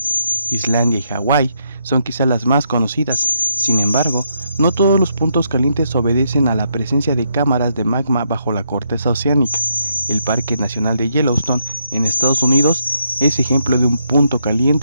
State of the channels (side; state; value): both; inverted; correlation -0.77